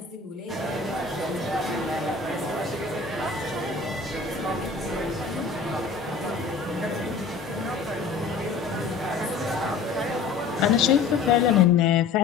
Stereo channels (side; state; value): right; quieter; 4.8 dB